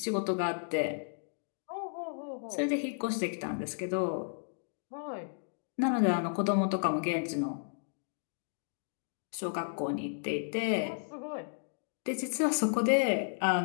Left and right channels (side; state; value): right; silent; digital silence